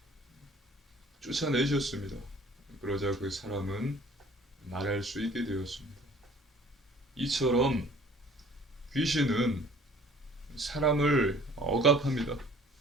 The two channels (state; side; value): normal; both; correlation 0.52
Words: 쫓아내셨습니다. 그러자 그 사람은 말할 수 있게 되었습니다. 이처럼 귀신은 사람을 억압합니다.